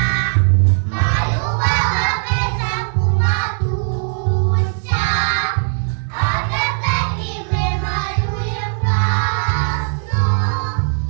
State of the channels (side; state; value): left; silent; digital silence